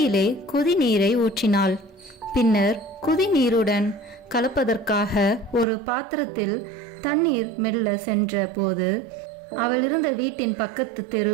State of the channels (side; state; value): left; drops out; at 5.7 s